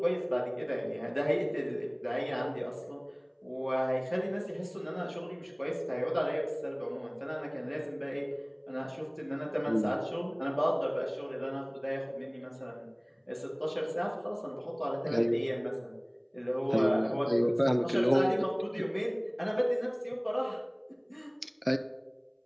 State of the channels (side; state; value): both; identical; correlation 1.00